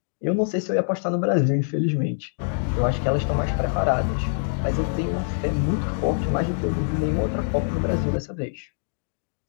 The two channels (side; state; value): right; silent; digital silence